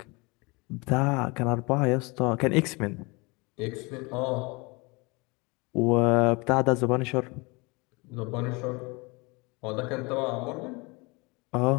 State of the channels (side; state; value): right; quieter; 27.0 dB